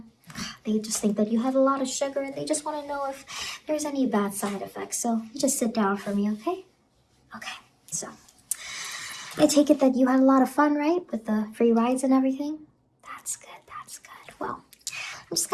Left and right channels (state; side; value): identical; both; correlation 1.00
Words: They just think that you have a lot of sugar and they just want to know if there's any bad side effects. So you just sit down for me, okay? Okay, so I take it that you had a lot of fun, right? With the free rides and everything? That's good, that's good. Well, I'm just